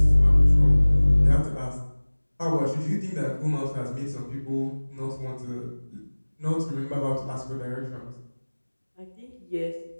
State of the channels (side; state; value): both; inverted; correlation -1.00